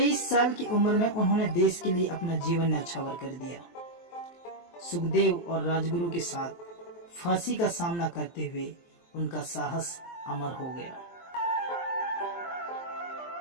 साल की उम्र में उन्होंने देश के लिए अपना जीवन न्यौछावर कर दिया। सुखदेव और राजगुरु के साथ फांसी का सामना करते हुए उनका साहस अमर हो गया।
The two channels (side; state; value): right; late; 23 ms